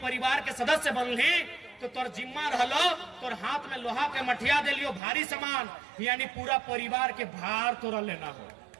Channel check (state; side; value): drops out; left; at 5.0 s